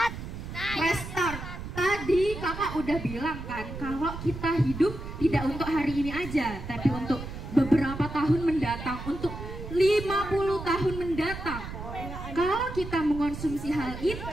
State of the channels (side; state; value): right; noise; rumble, 9 dB below the sound